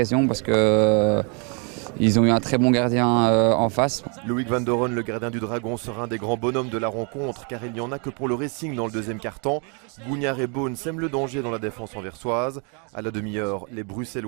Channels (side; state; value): left; quieter; 36.1 dB